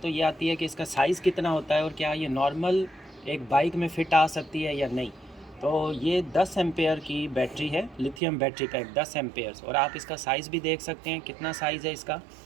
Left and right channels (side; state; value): left; drops out; at 8.2 s